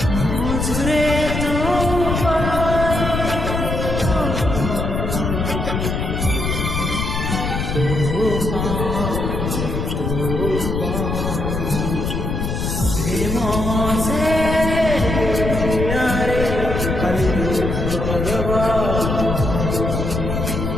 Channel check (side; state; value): left; noise; rumble, 2 dB below the sound